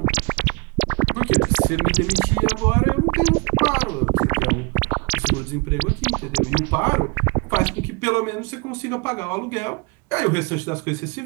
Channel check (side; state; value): left; quieter; 32.1 dB